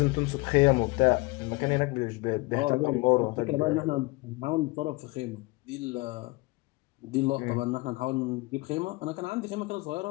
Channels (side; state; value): right; quieter; 23.8 dB